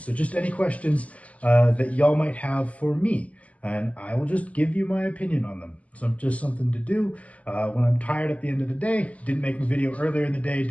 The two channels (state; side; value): late; right; 0.069 ms